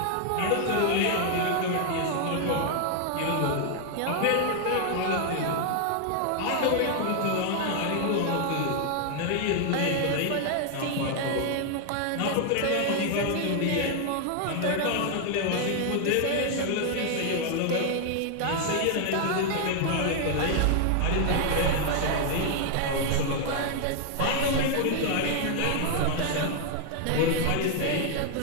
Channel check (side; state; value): both; different; correlation 0.00